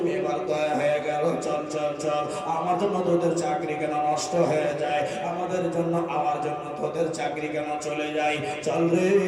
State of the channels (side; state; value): both; identical; correlation 1.00